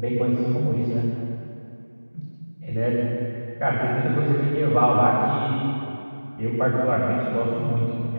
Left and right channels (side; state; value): both; inverted; correlation -1.00